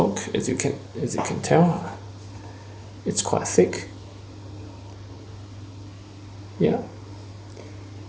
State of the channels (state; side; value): identical; both; correlation 1.00